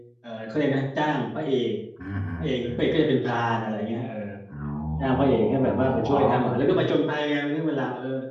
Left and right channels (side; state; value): both; identical; correlation 1.00